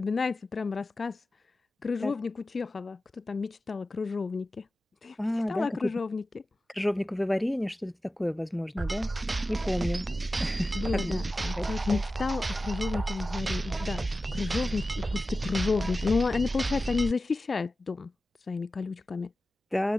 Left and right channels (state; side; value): normal; both; correlation 0.94